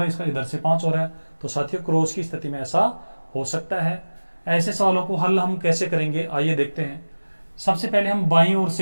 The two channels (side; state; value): both; inverted; correlation -1.00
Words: है, इसका इधर से 5 हो रहा है। तो साथियों क्रॉस की स्थिति में ऐसा हो सकता है। ऐसे सवालों को हल हम कैसे करेंगे आइए देखते हैं। सबसे पहले हम बाईं ओर